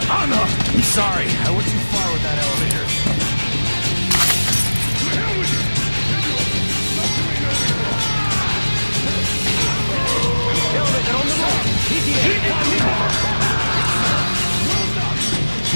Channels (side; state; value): both; inverted; correlation -1.00